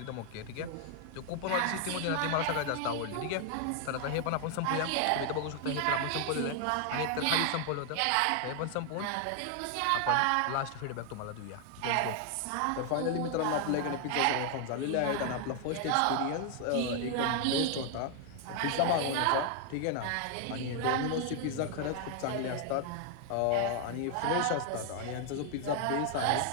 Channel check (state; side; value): different; both; correlation 0.00